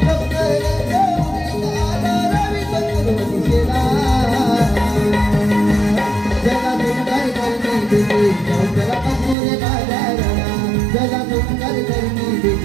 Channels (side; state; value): left; drops out; at 9.3 s